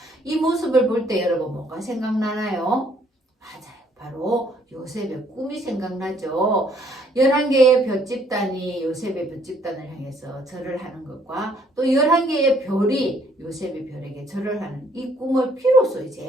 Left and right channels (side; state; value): both; normal; correlation 0.65